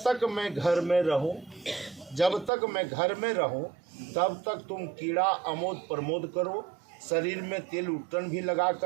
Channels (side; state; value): left; drops out; at 2.5 s